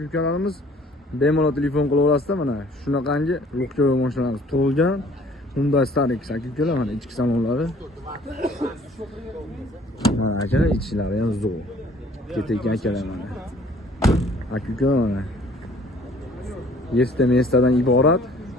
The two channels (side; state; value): both; normal; correlation 0.55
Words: Bemalol telefon qilib olasizlar mana shunaqangi Luxyoy mashinalarimiz tug'ilgan Hyundai Starex aka-ukalar mana ichki salonlari. Mana aka ichlari ham zo'r. Ketayotgan akalar mana. Aka-ukalar mana. Yesta-mestadan iborat